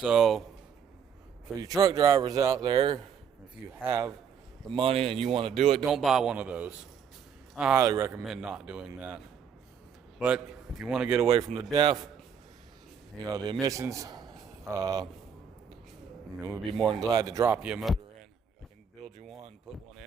for you truck drivers out there, if you have the money and you want to do it, don't buy one of those. I highly recommend not doing that. But if you want to get away from the DEF, the emissions, we'd be more than glad to drop you a motor in. I can build you one, put one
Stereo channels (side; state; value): left; quieter; 7.3 dB